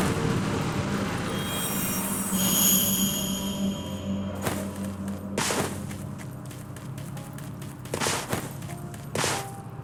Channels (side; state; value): both; identical; correlation 1.00